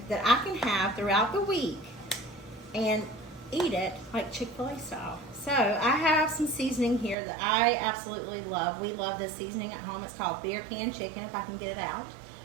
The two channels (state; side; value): drops out; left; at 7.2 s